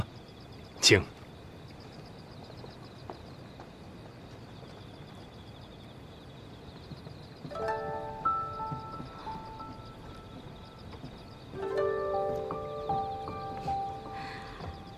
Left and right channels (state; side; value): identical; both; correlation 1.00